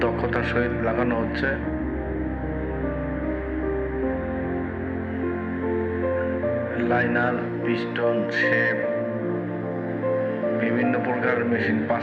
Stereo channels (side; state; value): both; identical; correlation 1.00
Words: দক্ষতার সহিত লাগানো হচ্ছে। লাইনার, পিস্টন, শেপ, বিভিন্ন প্রকার মেশিন,